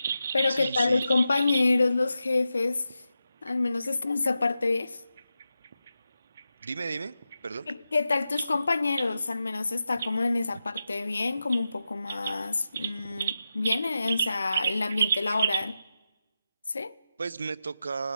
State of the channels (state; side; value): inverted; both; correlation -0.90